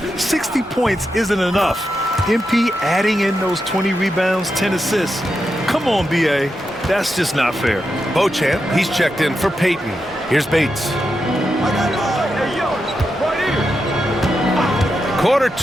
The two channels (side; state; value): both; normal; correlation 0.87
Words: 60 points isn't enough. MP adding in those 20 rebounds, 10 assists. Come on, BA. That's just not fair. Beauchamp, he's checked in for Peyton. Here's Bates. Quarter